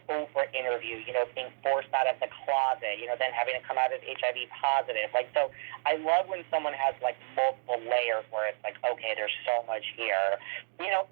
Oprah interview, being forced out of the closet, then having to come out as HIV positive. Like, so I love when someone has, like, multiple layers where it's like, okay, there's so much here.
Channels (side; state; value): left; silent; digital silence